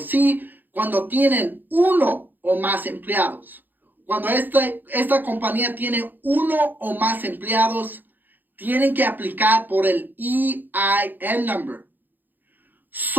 cuando tienen uno o más empleados, cuando esta compañía tiene uno o más empleados, tienen que aplicar por el EIN number.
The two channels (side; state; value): left; late; 0.088 ms